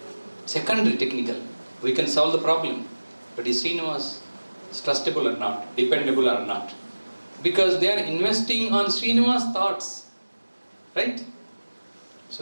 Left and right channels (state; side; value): inverted; both; correlation -1.00